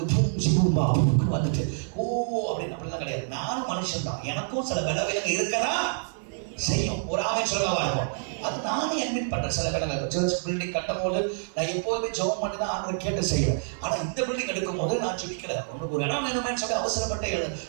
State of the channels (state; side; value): silent; left; 56 dB below the other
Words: பூம்பா வந்துட்டு அப்படிலாம் கிடையாது. நானும் மனுஷன் தான். எனக்கும் சில விளைவுகள் இருக்கிறா செய்யும். ஒரு ஆமென் சொல்ல வரேன். அது நானே அட்மிட் பண்றேன். சில இடங்கள் சர்ச் பில்டிங் கட்டும் போது நான் எப்போதுமே ஜெபம் பண்ணி தான் ஆண்டவரை கேட்டு செய்வேன். ஆனா இந்த பில்டிங் எடுக்கும் போது நான் ஜெபிக்கல. உனக்கு ஒரு இடம் வேணுமேன்னு சொல்லி அவசரப்பட்டு